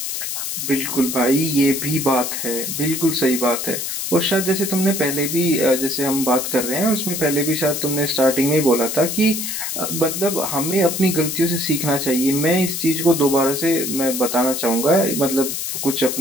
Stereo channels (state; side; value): noise; left; hiss, 4 dB below the sound